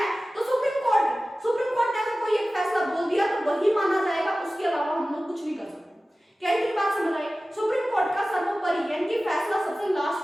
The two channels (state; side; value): normal; both; correlation 0.96